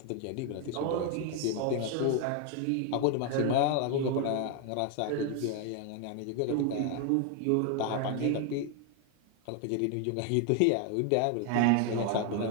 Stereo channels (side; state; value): both; different; correlation 0.01